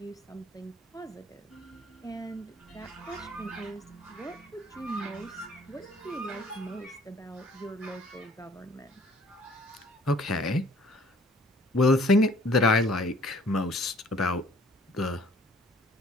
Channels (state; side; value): normal; both; correlation 0.57